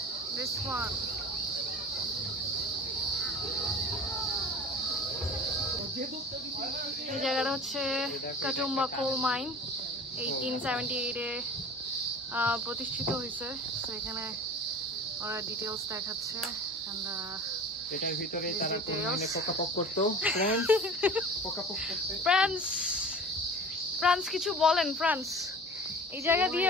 This one. এই জায়গাটা হচ্ছে কাটুম্বা কোল মাইন, 1878-এ প্রতিষ্ঠিত হয়েছে। তো এখানে ওরা ডিটেলস দেখাচ্ছে। এটার ভিতরে তারা কোল মাইনে পোকাপোক করতো। ফ্রান্স কিছু বলেন ফ্রান্স। এই জায়গা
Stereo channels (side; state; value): both; normal; correlation 0.39